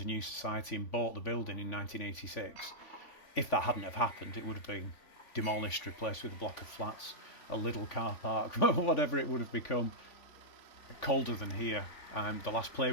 new society and bought the building in 1986. If that hadn't have happened, it would have been demolished, replaced with a block of flats, a little car park, whatever it would have become. Colder than here. The last play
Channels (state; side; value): late; right; 3.5 ms